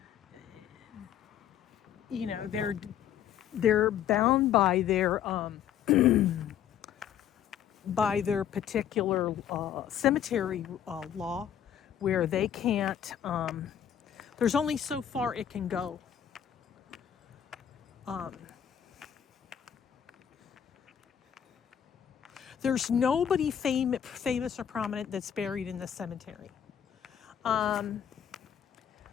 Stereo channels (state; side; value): quieter; right; 9.5 dB